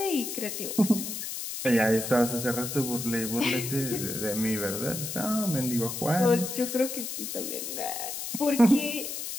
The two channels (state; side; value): noise; left; hiss, 6 dB below the sound